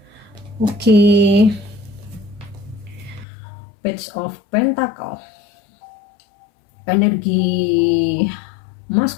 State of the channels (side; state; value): right; drops out; at 3.2 s